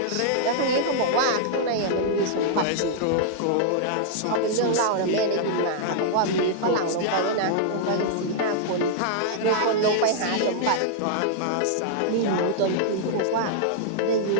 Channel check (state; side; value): different; both; correlation -0.01